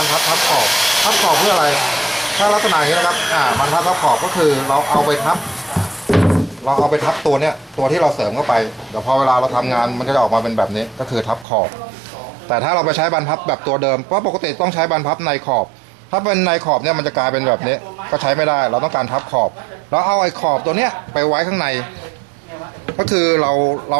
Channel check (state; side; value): drops out; left; at 11.5 s